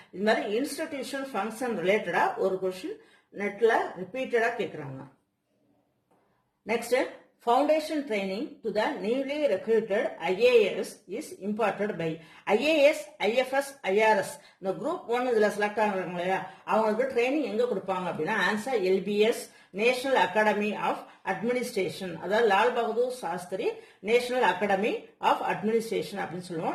இது மாதிரி institution function related ஒரு question நெட்ல repeated கேக்குறாங்க. Next, foundation training to the newly recruited IAS is imparted by IAS, IFS, IRS. இந்த group 1 இதுல select ஆகுறாங்க இல்லையா, அவங்களுக்கு ட்ரைனிங் எங்க கொடுப்பாங்க அப்படின்னா ஆன்சர் LBS, national academy of administration. அதாவது Lal Bahadur Shastri national academy of administration அப்படின்னு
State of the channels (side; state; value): both; identical; correlation 1.00